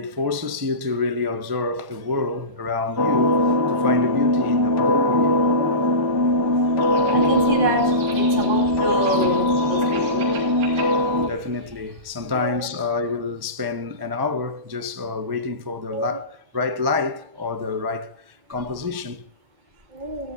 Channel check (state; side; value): late; left; 1.1 ms